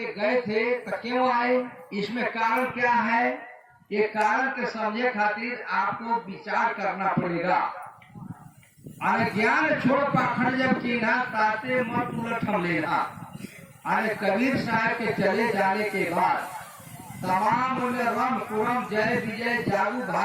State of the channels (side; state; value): both; identical; correlation 1.00